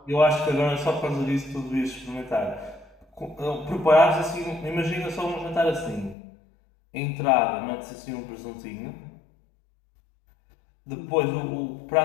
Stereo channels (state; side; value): drops out; right; at 6.2 s